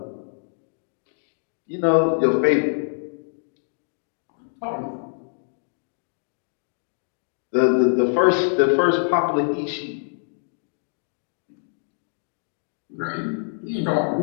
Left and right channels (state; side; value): silent; right; digital silence